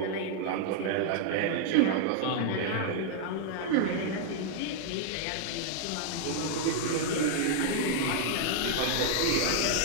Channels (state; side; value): different; both; correlation 0.00